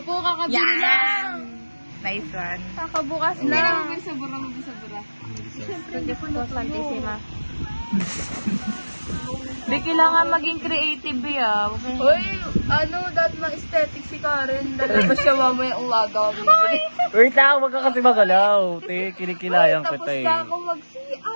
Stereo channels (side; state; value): both; inverted; correlation -1.00